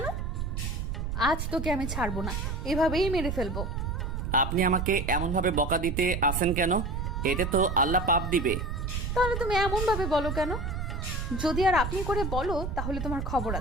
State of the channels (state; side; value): noise; right; rumble, 3 dB below the sound